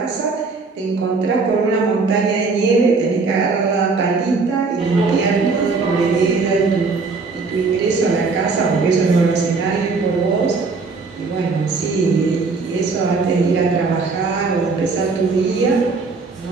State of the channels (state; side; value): quieter; left; 4.3 dB